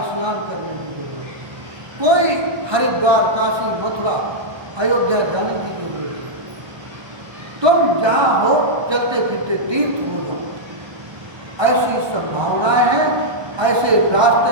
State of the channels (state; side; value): late; left; 1.3 ms